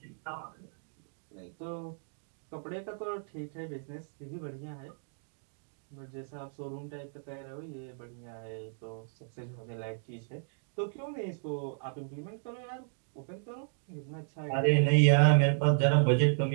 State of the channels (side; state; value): left; silent; digital silence